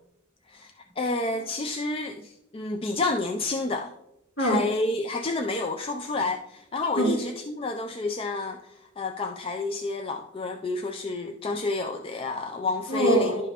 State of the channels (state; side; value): normal; both; correlation 0.28